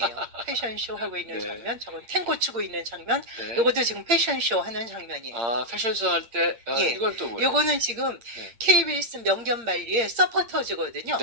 패션 쇼 하고 있는 네. 장면, 저건 탱고 추고 있는 장면, 네. 요것도 지금 패션 쇼 하는 장면이에요. 패션쇼 할 때 예. 이건 또 뭐예요? 요거는 지금 네. KBS 명견말리의 서포터즈거든요.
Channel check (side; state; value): left; late; 8.6 ms